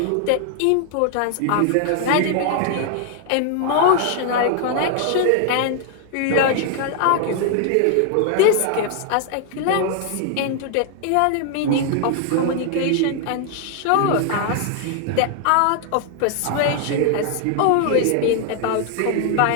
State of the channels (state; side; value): different; both; correlation 0.00